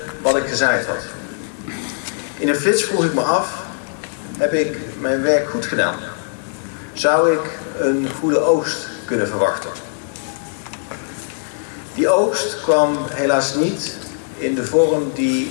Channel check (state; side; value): silent; right; digital silence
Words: wat ik gezaaid had. In een flits vroeg ik me af: heb ik mijn werk goed gedaan? Zou ik een goede oogst kunnen verwachten? Die oogst kwam helaas niet in de vorm